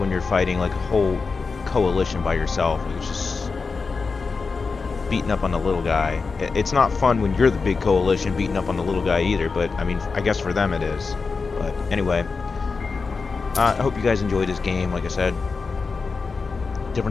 you're fighting like a whole coalition by yourself. It's just beating up on the little guy. It's not fun when you're the big coalition beating up on the little guy either, but I mean, I guess for them it is. But anyway, I hope you guys enjoyed this game. Like I said,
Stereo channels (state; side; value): quieter; right; 4.6 dB